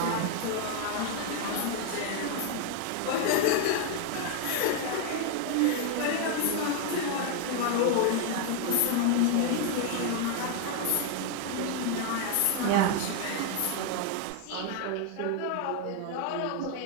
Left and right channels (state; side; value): different; both; correlation 0.00